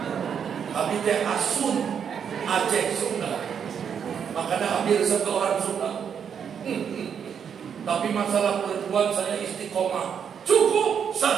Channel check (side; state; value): left; quieter; 7.6 dB